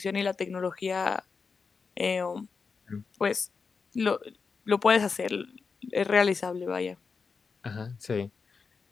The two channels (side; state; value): right; quieter; 5.1 dB